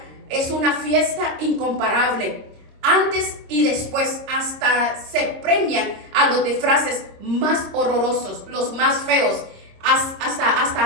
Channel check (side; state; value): left; late; 26 ms